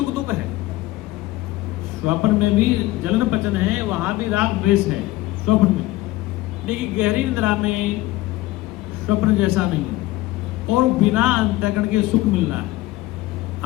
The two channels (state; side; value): quieter; right; 17.8 dB